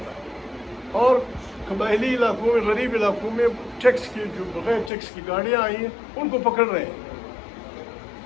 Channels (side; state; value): right; drops out; at 4.9 s